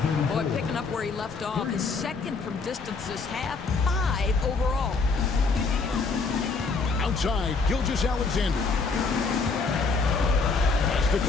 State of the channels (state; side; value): quieter; right; 4.4 dB